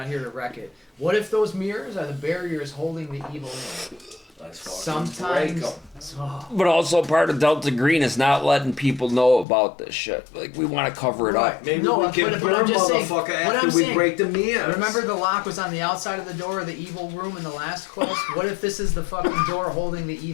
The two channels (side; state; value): right; drops out; at 9.5 s